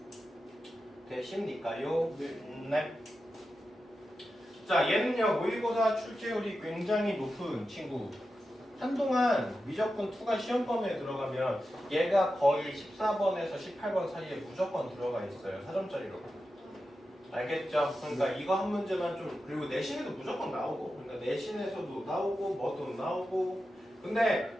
되십니까요? 네. 자, 얘는요. 모의고사 출제율이 굉장히 높은 친구. 한동안 미적분 2가 시험 범위에 들어가면 얘가 거의 14번에서 18번 사이에 무조건 들어가 있어요. 4점짜리로. 알겠죠? 그러니까 이거 한 문제만 좀 그리고 내신에도 무조건 나오고 그러니까 내신에서도 나오고 뭐도 나오고 근데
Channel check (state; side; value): normal; both; correlation 0.91